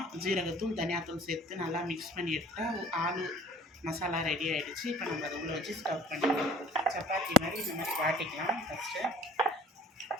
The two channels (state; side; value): normal; both; correlation 0.51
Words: ஜீரகத்தூள் தனியாத்தூள் சேர்த்து நல்லா மிக்ஸ் பண்ணி எடுத்தால் ஆலு மசாலா ரெடி ஆகிடுச்சு. இப்போ நம்ம அதை உள்ளே வச்சு ஸ்டஃப் பண்ணிக்கலாம். சப்பாத்தி மாதிரி இந்த மாதிரி வாட்டிக்கலாம். ஃபஸ்ட்டு